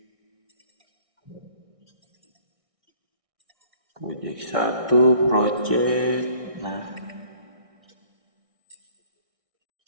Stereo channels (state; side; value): late; left; 1.6 ms